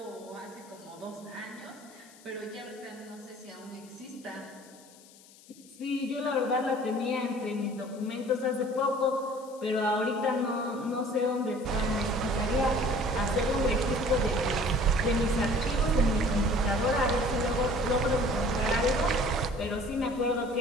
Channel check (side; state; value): left; noise; hiss, 24 dB below the sound